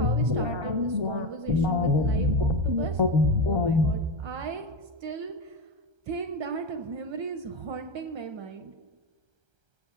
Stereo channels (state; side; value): late; left; 1.3 ms